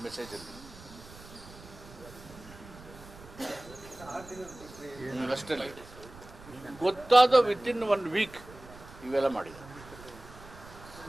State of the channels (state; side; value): noise; right; rumble, 18 dB below the sound